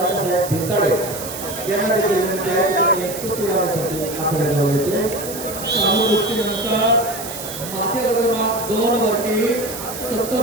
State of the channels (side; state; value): right; noise; hiss, 9 dB below the sound